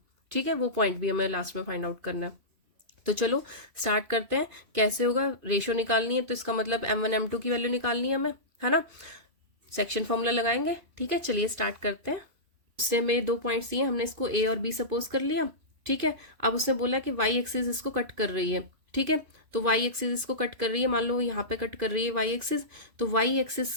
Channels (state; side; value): late; left; 2.5 ms